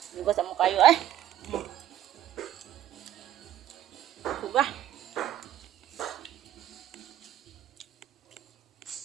Lugo sa mukha kayo suga.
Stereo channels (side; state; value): left; quieter; 11.9 dB